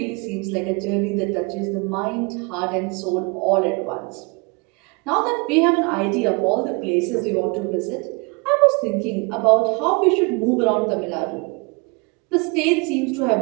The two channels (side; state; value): left; quieter; 30.6 dB